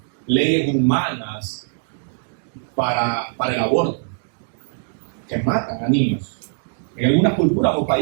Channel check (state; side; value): silent; left; digital silence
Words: leyes humanas para el aborto, que matan a niños. En algunas culturas o